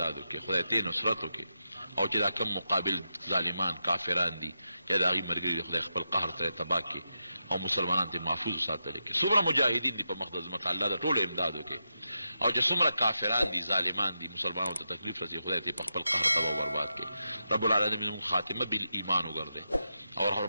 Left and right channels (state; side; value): inverted; both; correlation -0.87